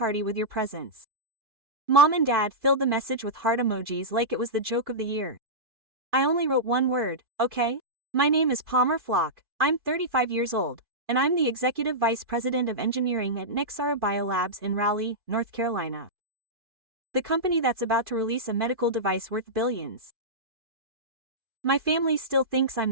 with your presence. Mom and Dad filled the message with heart emojis like it was the joke of the year. I only wrote one word, okay? My name is Palmer Flock, I'm 35 years old, and I'm the Executive Vice President of Engineering at Nexara Biolabs in Raleigh, North Carolina. The company that's about to release a medical device worth billions. My family still thinks I'm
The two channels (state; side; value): late; left; 2.5 ms